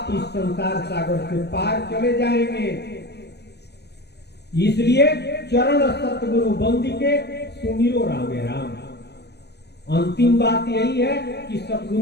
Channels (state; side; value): late; right; 0.49 ms